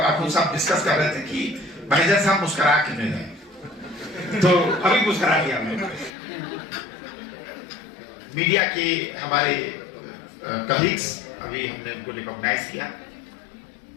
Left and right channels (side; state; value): right; drops out; at 6.1 s